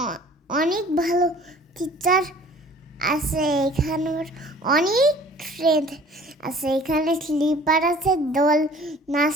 অনেক ভালো টিচার আছে, এখানে অনেক ফ্রেন্ড আছে। এখানে স্লিপার আছে, দোল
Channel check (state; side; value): normal; both; correlation 0.50